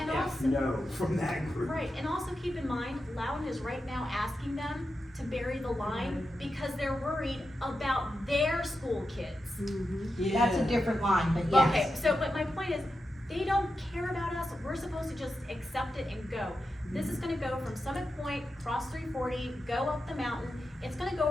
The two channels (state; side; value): normal; both; correlation 0.89